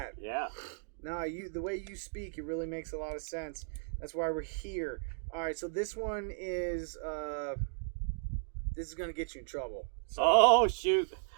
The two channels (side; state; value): left; silent; digital silence